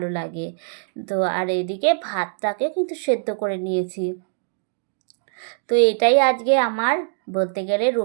লাগে। তো আর এদিকে ভাতটাকে কিন্তু সেদ্ধ করে নিয়েছি। তো এটাই আজকে আমার বলতে গেলে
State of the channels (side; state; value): left; silent; 64 dB below the other